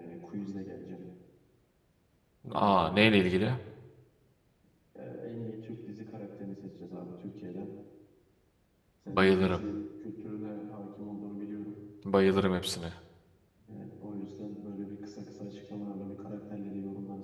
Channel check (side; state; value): both; identical; correlation 1.00